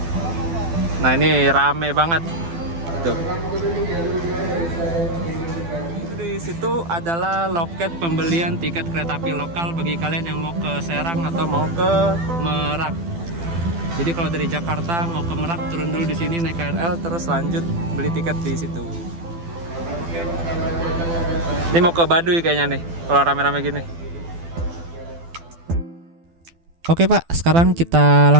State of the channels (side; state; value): left; late; 12 ms